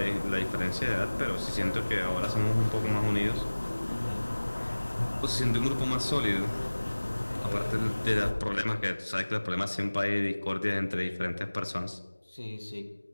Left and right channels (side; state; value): both; inverted; correlation -1.00